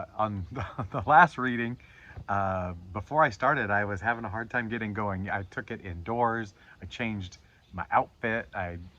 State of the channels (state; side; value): identical; both; correlation 1.00